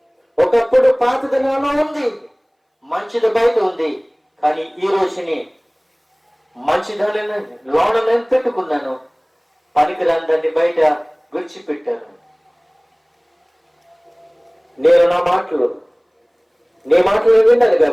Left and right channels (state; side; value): identical; both; correlation 1.00